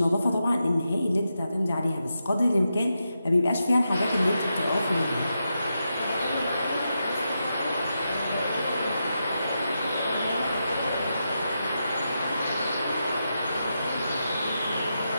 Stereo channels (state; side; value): inverted; both; correlation -0.86